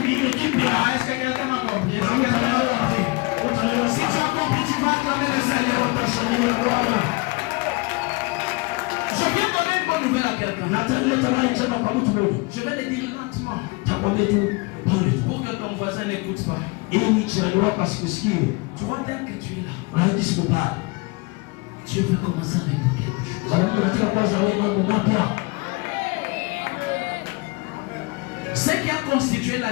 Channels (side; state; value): right; quieter; 26.2 dB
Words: kingine kipya. Est-ce que quelqu'un m'a compris? Utaelewa. Utaelewa Si tu sasa. as compris, tu vas acclamer le Seigneur. Utasalia Bwana. Je viens donner une bonne nouvelle à quelqu'un. Nataleta habari njema kwa mtu mmoja. Je vais le dire lentement Takwambia tu pole. pour que ton voisin n'écoute pas. Ili jirani wako asikusikie. Tu vois, dès que tu es là, Unahisi kupaa. Dieu veut commencer à répondre quelque chose. Sababu nataka kwanza wewe mambo mapya. Ce qui a constitué la